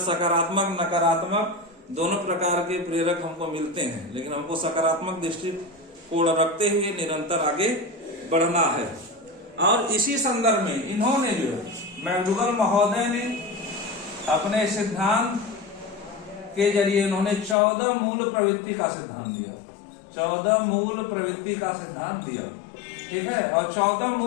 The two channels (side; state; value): right; drops out; at 17.6 s